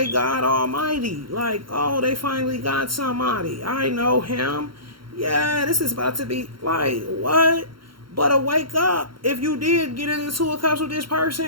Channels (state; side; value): late; left; 0.73 ms